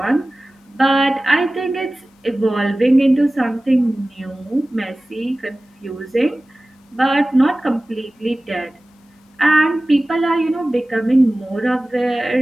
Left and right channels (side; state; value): both; normal; correlation 0.97